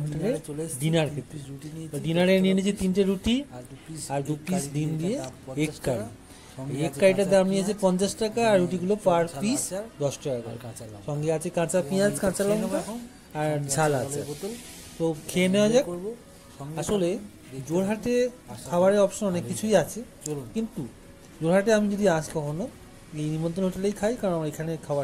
হোটেলে ডিনার খেতে। ডিনারে নিয়ে নিয়েছি 3টে রুটি আর 2 পিস ডিম দিয়ে এগ কারি। এগ কারিটার দাম নিয়েছে 50 টাকা আর রুটিগুলো পার পিস 10 টাকা করে। সঙ্গে আছে কাঁচা পেঁয়াজ, কাঁচা লঙ্কা আর ঝাল আছে। তো খেয়ে নেওয়া যাক। আসলে জোরহাটে খাবারের অপশন অনেক কিছুই আছে, কিন্তু জোরহাটে আমি যদি আসি কখনো এই নিমন্ত্রণ হোটেলেই খাই, কারণ আমার এখানে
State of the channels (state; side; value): identical; both; correlation 1.00